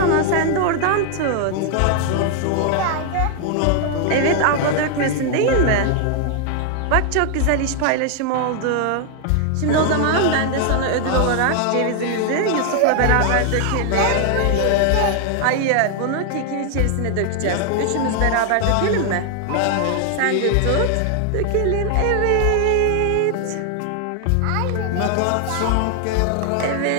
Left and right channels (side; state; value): both; different; correlation 0.00